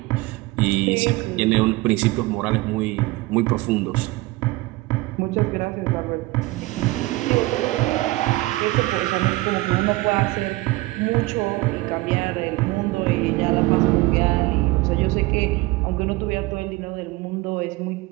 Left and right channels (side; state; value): left; quieter; 20.7 dB